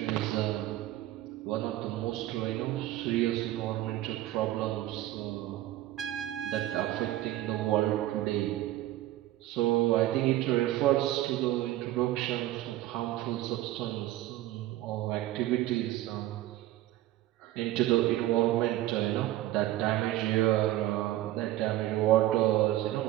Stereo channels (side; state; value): left; quieter; 15.0 dB